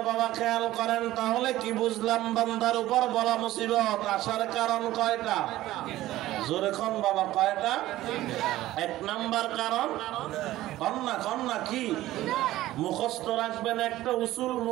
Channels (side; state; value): left; quieter; 15.5 dB